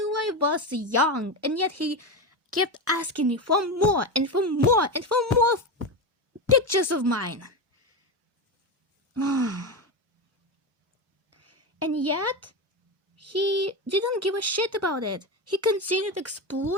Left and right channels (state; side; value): normal; both; correlation 0.16